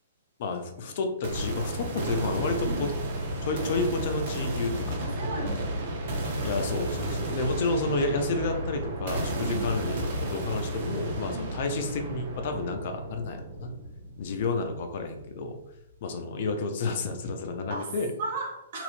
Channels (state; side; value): inverted; both; correlation -0.49